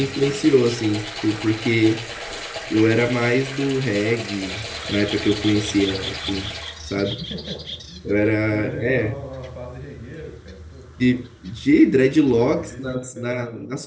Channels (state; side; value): identical; both; correlation 1.00